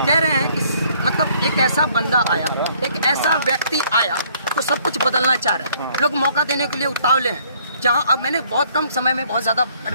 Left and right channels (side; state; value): both; inverted; correlation -0.63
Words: कह रहे हैं कि मतलब एक ऐसा बंदा आया, एक ऐसा व्यक्ति आया तो सब कुछ बदलना चाह रहे हैं। लोग मौका देने के लिए उतावले हैं। जहाँ अब मैंने बहुत कम समय में बहुत ज़्यादा